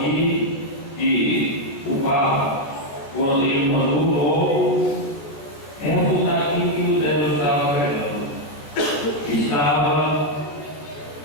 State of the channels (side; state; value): right; late; 14 ms